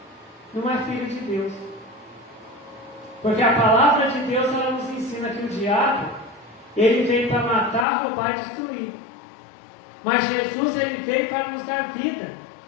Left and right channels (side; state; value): right; drops out; at 7.9 s